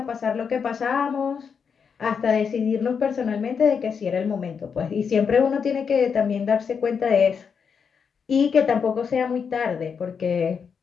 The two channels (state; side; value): quieter; right; 6.4 dB